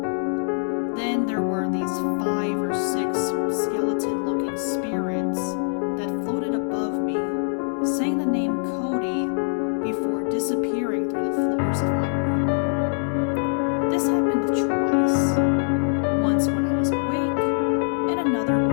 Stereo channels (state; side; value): silent; right; digital silence